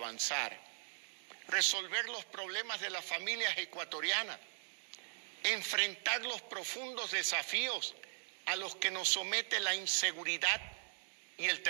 resolver los problemas de las familias ecuatorianas, enfrentar los profundos desafíos a los que nos somete la inseguridad y el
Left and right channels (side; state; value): left; silent; digital silence